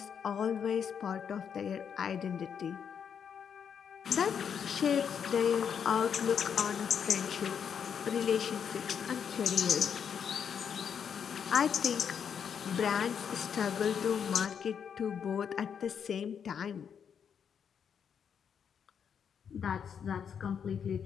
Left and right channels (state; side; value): quieter; right; 7.5 dB